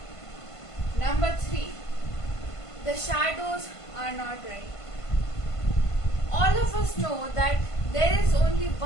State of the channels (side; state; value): right; late; 1.5 ms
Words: Number 3. The shadows are not right. All of us know that there is only